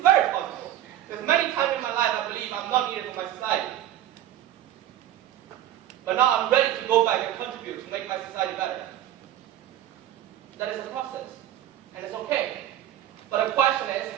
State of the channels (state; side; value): quieter; left; 12.1 dB